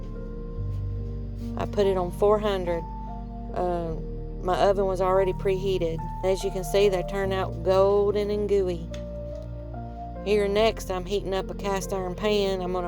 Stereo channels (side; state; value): both; identical; correlation 1.00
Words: I put it on 400. My oven was already preheated. As you can see, they turn out golden and gooey. Here next, I'm heating up a cast iron pan. I'm